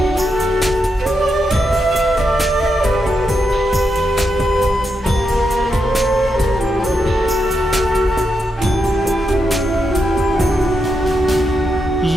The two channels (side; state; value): both; normal; correlation 0.83